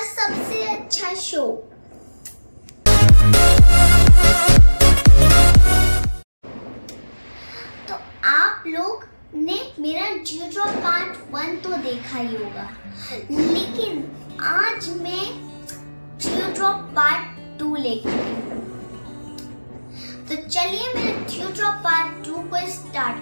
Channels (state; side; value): inverted; both; correlation -1.00